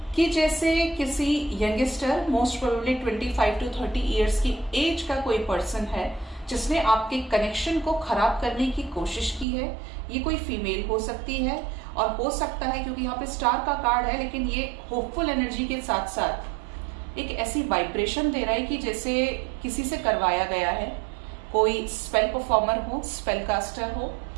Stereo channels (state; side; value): drops out; left; at 9.5 s